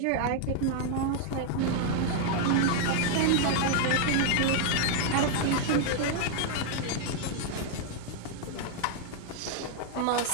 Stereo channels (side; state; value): both; different; correlation 0.00